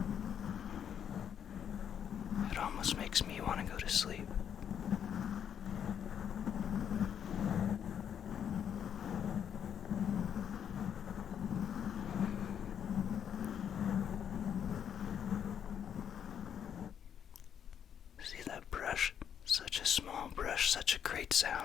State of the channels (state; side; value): quieter; right; 8.6 dB